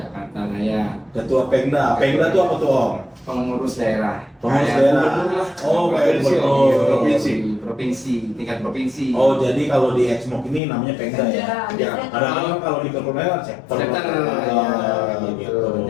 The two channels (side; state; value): right; drops out; at 10.6 s